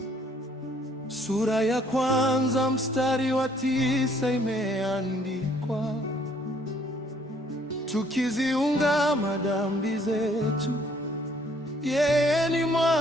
sura ya kwanza mstari wa 9 imeandikwa, tukiziungama dhambi zetu, yeye ni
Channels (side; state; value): both; normal; correlation 0.63